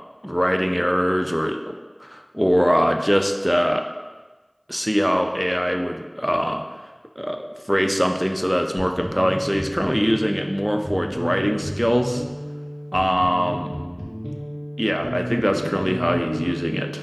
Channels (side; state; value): both; identical; correlation 1.00